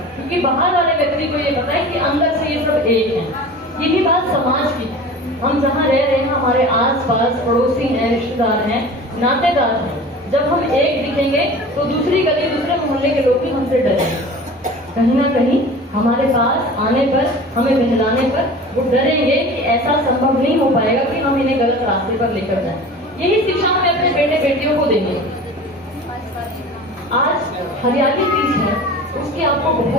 क्योंकि बाहर वाले व्यक्ति को ये पता है कि अंदर से ये सब एक है। यही बात समाज की, हम जहाँ रह रहे हैं हमारे आसपास पड़ोसी हैं, रिश्तेदार हैं, नातेदार हैं, जब हम एक दिखेंगे तो दूसरी गली दूसरे मोहल्ले के लोग भी हमसे डरेंगे। कहीं ना कहीं हमारे पास आने पर, हमें बहलाने पर वो डरेंगे कि ऐसा संभव नहीं हो पाएगा कि हम इन्हें गलत रास्ते पर लेकर जाएं। यही शिक्षा हमें अपने बेटे बेटियों को देंगे। आज हरियाली तीज है, उसकी आपको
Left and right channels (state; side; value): normal; both; correlation 0.38